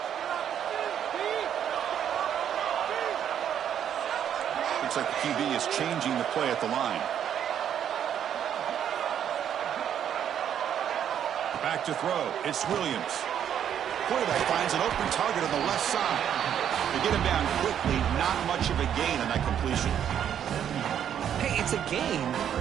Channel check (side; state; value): left; quieter; 9.4 dB